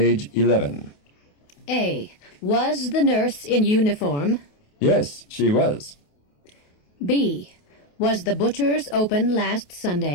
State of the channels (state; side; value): late; right; 28 ms